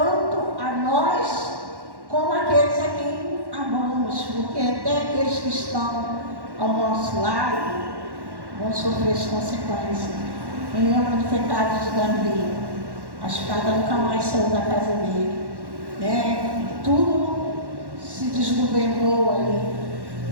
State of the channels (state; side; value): late; left; 1.1 ms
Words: a nós como aqueles a quem amamos, porque até aqueles que estão ao nosso lado vão sofrer as consequências. Quem lembra do pecado de Davi? A espada nunca mais saiu da casa dele, né? Tudo se desgovernou ali,